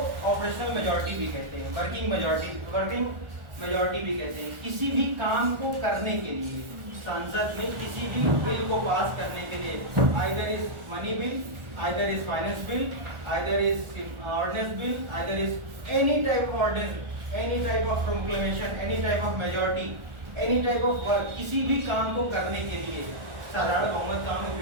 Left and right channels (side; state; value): left; late; 1.4 ms